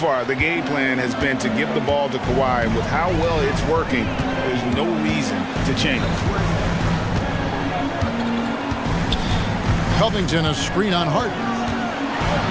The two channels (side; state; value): both; identical; correlation 1.00